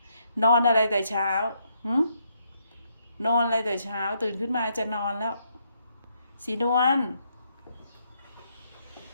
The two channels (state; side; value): inverted; both; correlation -0.75